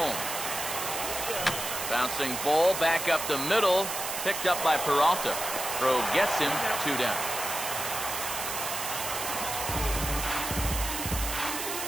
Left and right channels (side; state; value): right; noise; hiss, 4 dB below the sound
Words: Bouncing ball back up the middle. Picked up by Peralta. Throw gets him 2 down.